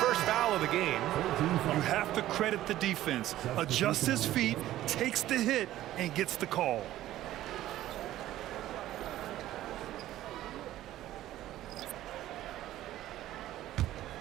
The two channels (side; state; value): left; quieter; 14.1 dB